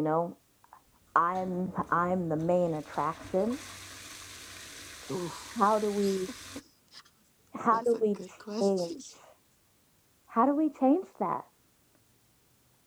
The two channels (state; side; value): identical; both; correlation 1.00